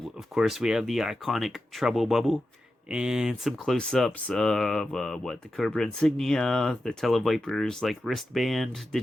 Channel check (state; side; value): normal; both; correlation 0.91